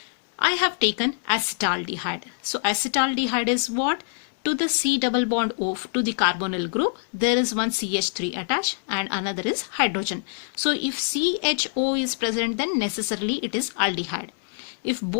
I have taken acetaldehyde. So acetaldehyde is what? To the C double bond O to the carbonyl group, there is one CH3 attached and another is hydrogen. So if CHO is present, then necessarily it is aldehyde. If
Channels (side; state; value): right; silent; 62 dB below the other